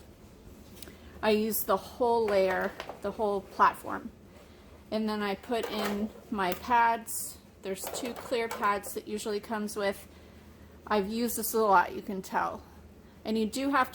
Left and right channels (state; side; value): identical; both; correlation 1.00